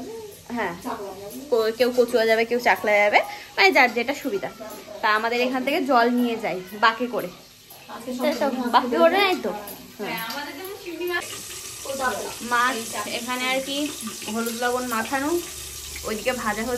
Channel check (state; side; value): identical; both; correlation 1.00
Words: হ্যাঁ, কেউ কচুয়া যাবে, কেউ চাকলা যাবে, মানে যার যেটা সুবিধা। তা আমাদের এখান থেকে জল নিয়ে যাই বাকে করে, বাকি করে নাই তো। মাছ এখানে আর কি হলুদ লবণ মাখানো, ওইদিকে ভাজা